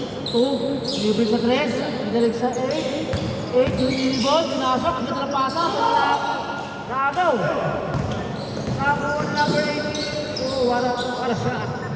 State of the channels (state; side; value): identical; both; correlation 1.00